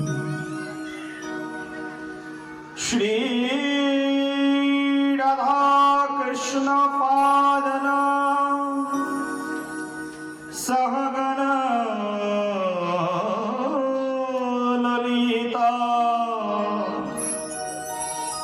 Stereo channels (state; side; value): identical; both; correlation 1.00